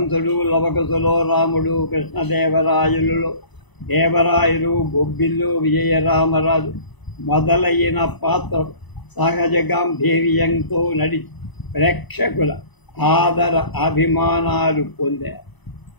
లవకుశలో రాముడు, కృష్ణదేవరాయలులో దేవరాయలు, బొబ్బిల్లు విజయరామరాజు మొదలైన పాత్రలు సహజ గాంభీర్యంతో నడిచి ప్రేక్షకుల ఆదర అభిమానాలు పొందారు.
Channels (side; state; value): right; late; 1.0 ms